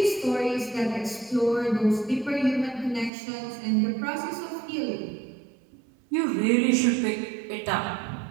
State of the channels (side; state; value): left; drops out; at 3.1 s